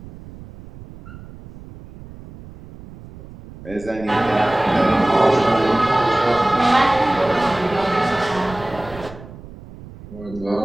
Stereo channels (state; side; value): noise; right; rumble, 17 dB below the sound